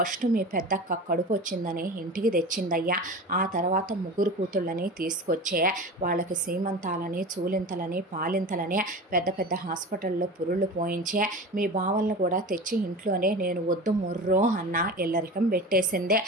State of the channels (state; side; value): normal; both; correlation 0.31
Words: మీ పెద్దక్క కడుపు వచ్చిందని ఇంటికి తెచ్చిందయ్యా. ఆ తర్వాత 3 కూతుళ్ళని తీసుకొచ్చే వాళ్ళకి సీమంతాలని, చూలింతలని, పాలింతలని పెద్ద హాస్పిటల్లో పురుళ్ళు పోయి మీ బావలను కూడా తెచ్చి ఇంట్లోనే నేను వద్దు మొర్రో అన్న ఎల్లరికం పెట్టేసిందే.